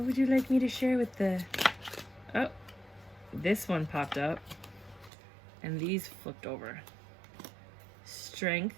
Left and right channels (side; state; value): left; drops out; at 5.1 s